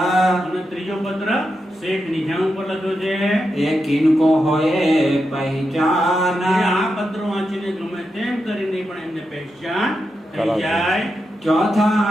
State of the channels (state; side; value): normal; both; correlation 0.87